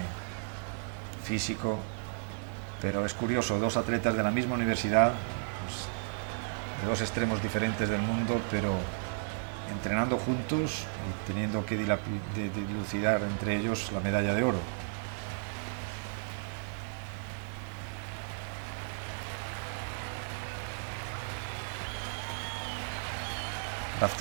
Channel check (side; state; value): left; silent; 55 dB below the other